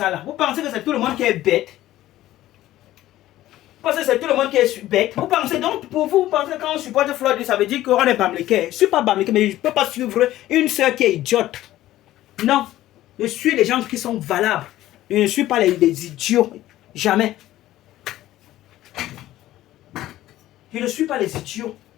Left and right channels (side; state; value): right; quieter; 14.7 dB